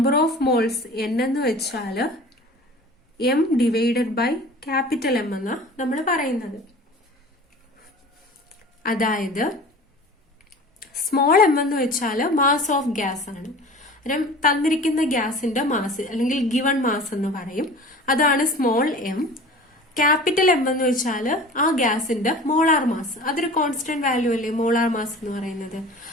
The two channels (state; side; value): normal; both; correlation 0.41